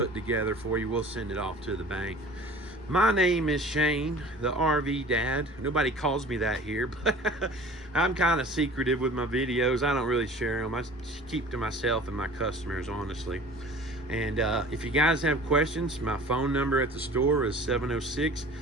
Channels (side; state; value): both; normal; correlation 0.44